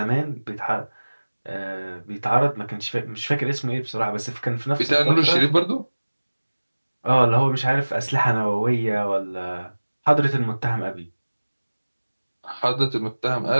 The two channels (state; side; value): inverted; both; correlation -1.00